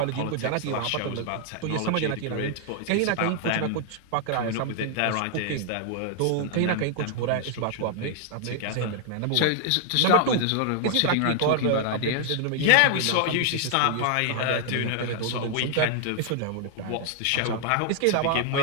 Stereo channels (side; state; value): both; different; correlation 0.00